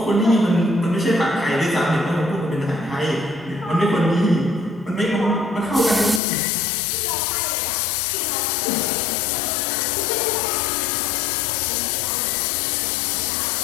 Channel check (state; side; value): drops out; right; at 6.2 s